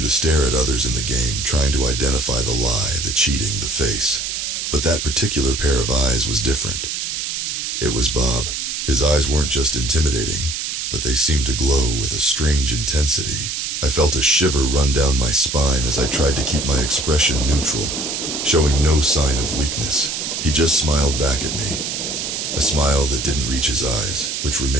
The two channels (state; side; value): noise; right; hiss, 3 dB below the sound